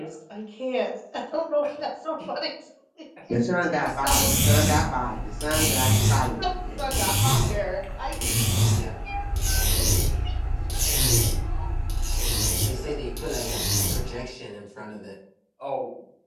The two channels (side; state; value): both; identical; correlation 1.00